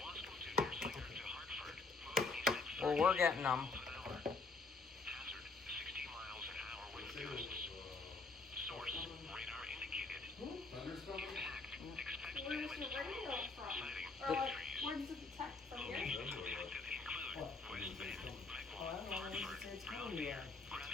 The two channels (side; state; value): right; quieter; 4.0 dB